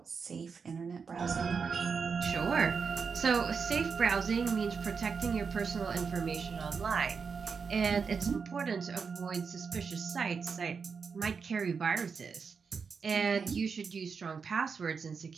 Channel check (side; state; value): left; quieter; 5.6 dB